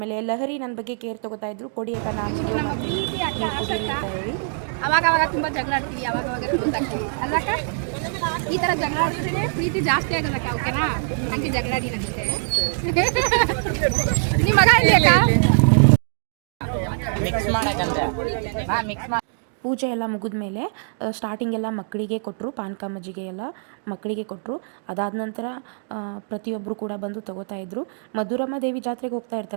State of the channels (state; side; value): silent; left; digital silence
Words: ಲಹರಿ ನನ್ನ ಬಗ್ಗೆ ಕೇರ್ ತೊಗೋತಾಯಿದ್ರು, ಕೊಡಿ ಅಕ್ಕ ನಾನು ಹೇಳಿ. ಅವಾಗ ತುಂಬ ಜಗಳ ಆಡ್ತೀವಿ, ಅವಾಗ ಕ್ಲೋಸ್ ಆಗ್ತೀವಿ ಅಲ್ಲಕ್ಕ. ಈ ಥರ ಜಗಳ ಆಡಿದ್ರೆ ಪ್ರೀತಿ ಜಾಸ್ತಿ ಆಗೋದಕ್ಕ, ಓಕೆನಾ? ಹಂಗೆ ಜಗಳ ಆಡಿ ನನಗೆ. ನಿಮ್ಮ ಮಗ ಇಲ್ಲಿ ಅಕ್ಕ? ಪೂಜೆ ಎಲ್ಲ ಮುಗಿದ ಮೇಲೆ ಸ್ಟಾರ್ಟಿಂಗೆಲ್ಲ ಮಕ್ಕಳಿಗೆ ಕೊಟ್ಟರು. ಪಾನಕ, ಮಜ್ಜಿಗೆ ಎಲ್ಲ ಮಕ್ಕಳಿಗೆ ಕೊಟ್ಟರು. ಅದಾದ ನಂತರ ಪ್ರತಿಯೊಬ್ಬರು ಕೂಡ ಬಂದು ತೊಗೋತಾಯಿದ್ರು. ಮಧುರಮ್ಮ ದೇವಿ ಜಾತ್ರೆಗೆ ಹೋಗ್ತಾ